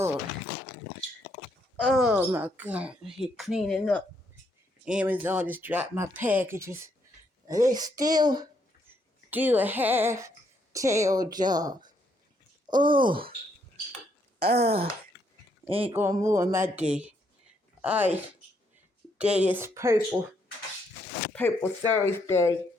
Oh my God, he cleaning up. Amazon just dropped my packages. They still do a half-tail job. Oh, ain't gonna ruin my day. Alright, day is Purple Thursday,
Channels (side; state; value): both; normal; correlation 0.73